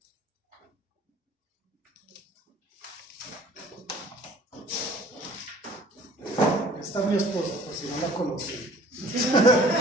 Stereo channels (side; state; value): both; normal; correlation 0.51